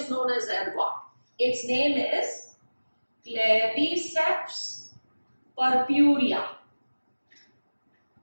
known as ergot. Its name is Claviceps purpurea.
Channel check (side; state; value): both; inverted; correlation -1.00